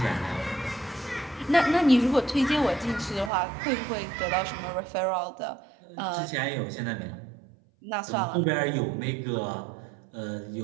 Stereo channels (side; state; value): left; drops out; at 3.3 s